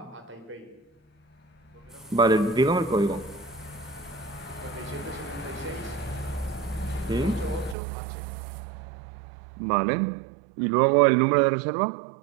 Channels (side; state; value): left; drops out; at 7.8 s